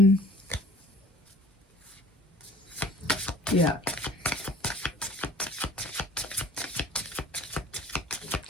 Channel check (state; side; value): normal; both; correlation 0.49